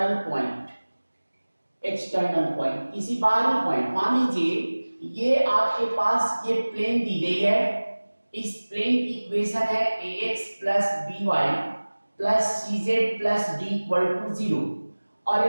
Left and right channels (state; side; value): inverted; both; correlation -1.00